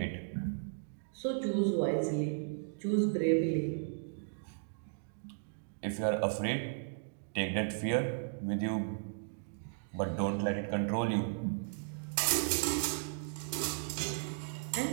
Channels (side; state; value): left; silent; digital silence